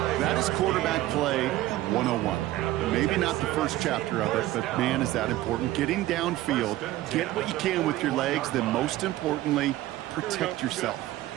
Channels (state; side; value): quieter; left; 15.7 dB